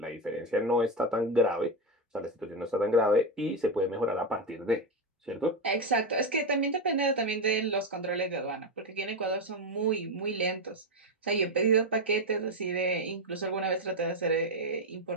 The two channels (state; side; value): normal; both; correlation 0.10